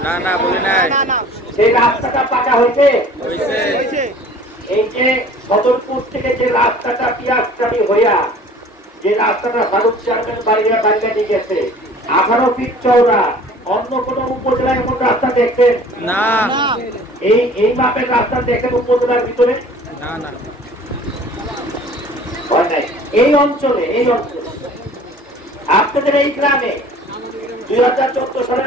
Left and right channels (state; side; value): normal; both; correlation 0.48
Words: না না, বলি নাই। সেই রাস্তাটা পাকা হয়েছে। এই যে সদরপুর থেকে যে রাস্তাটা পিয়াজটারি হইয়া, যে রাস্তাটা ফারুক চেয়ারম্যান বাড়িয়া বাড়িয়া নিয়ে গেছে 18 ফিট চওড়া, অন্য কোন উপজেলায় এমন রাস্তা দেখছেন? না। এই মাপের রাস্তা দেখেন উপজেলার ভিতরে? না না, এই অঞ্চলে আপনাদের এই গ্রামে 2014 সালের